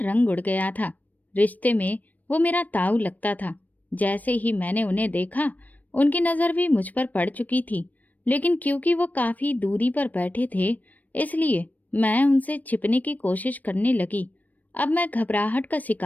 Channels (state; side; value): late; right; 0.079 ms